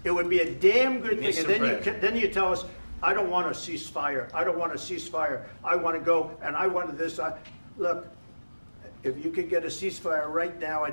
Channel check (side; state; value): both; inverted; correlation -1.00